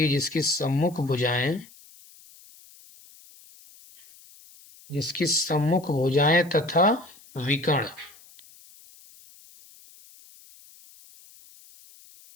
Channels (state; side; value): noise; left; hiss, 24 dB below the sound